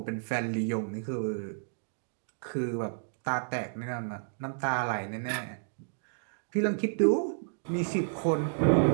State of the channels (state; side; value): silent; left; digital silence